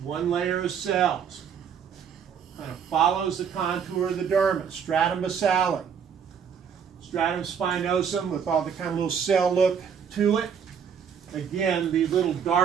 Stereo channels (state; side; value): quieter; left; 7.3 dB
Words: one layer of cells, kind of follows the contour of the dermis, stratum basale, stratum spinosum with all the kind of little cell look to it. Again, the little